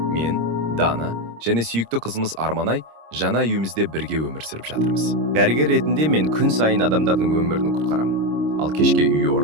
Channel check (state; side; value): late; left; 26 ms